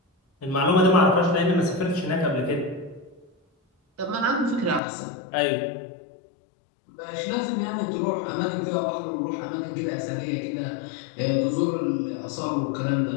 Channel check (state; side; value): drops out; right; at 4.8 s